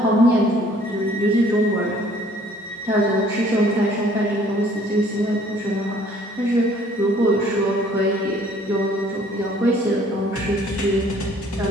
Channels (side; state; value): both; normal; correlation 0.58